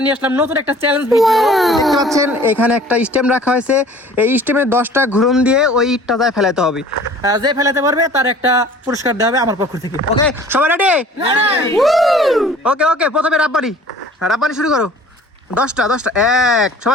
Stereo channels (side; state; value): both; normal; correlation 0.49